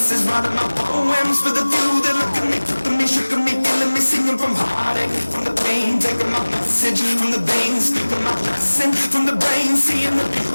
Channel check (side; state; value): both; inverted; correlation -1.00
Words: writing my poems for the few that look at me, took me, shook me, feeling me, singing from heartache, from the pain, taking my message from the veins, speaking my lesson from the brain, seeing the